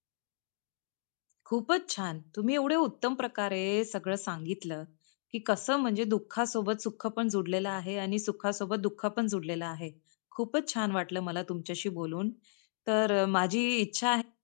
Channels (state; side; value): silent; right; digital silence